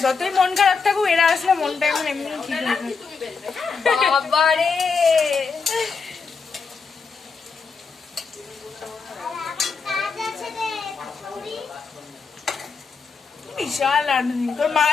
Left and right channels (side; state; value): right; quieter; 5.1 dB